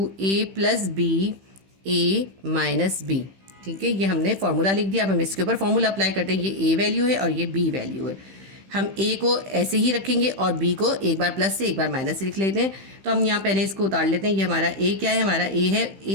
A plus B A minus B. ठीक है, ये हमने फॉर्मूला लिख दिया। अब हम इसके ऊपर फॉर्मूला अप्लाई करते हैं। ये ए वैल्यू है और ये बी वैल्यू है। हम ए को ऐसे ही रखेंगे और बी को एक बार प्लस से एक बार माइनस से लिख लेते हैं। तो हम यहाँ पहले इसको उतार लेते हैं। ये हमारा ए क्या है, हमारा ए है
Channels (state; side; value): late; left; 15 ms